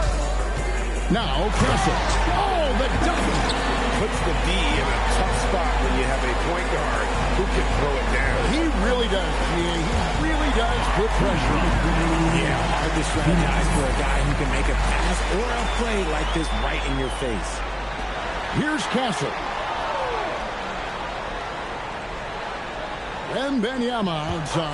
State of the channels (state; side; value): identical; both; correlation 1.00